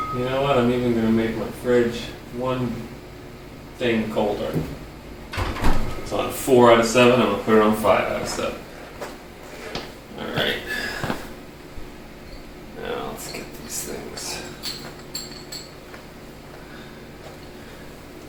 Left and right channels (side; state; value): both; identical; correlation 1.00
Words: You know what? I'm even going to make my fridge one thing colder. It's on 4 out of 7. I'm going to put it on 5 out of 7. Alright. Now let's get these things.